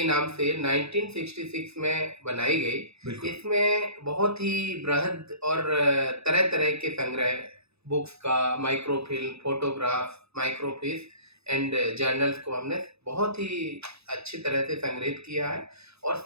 नाम से 1966 में बनाई गई। इसमें बहुत ही बृहद और तरह तरह के संग्रह, बुक्स का, microfilm, photograph, microfilm and journals को हमने बहुत ही अच्छी तरह से संग्रहित किया है और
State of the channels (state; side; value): late; left; 0.79 ms